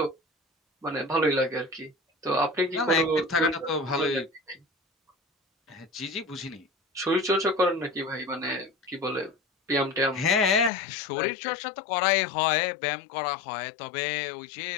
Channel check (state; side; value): drops out; right; at 10.7 s